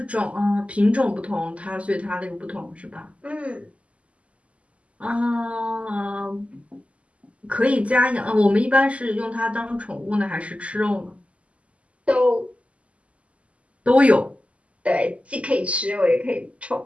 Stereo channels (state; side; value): late; left; 0.062 ms